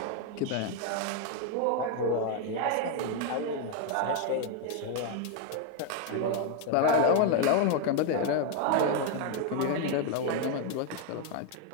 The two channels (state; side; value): different; both; correlation 0.01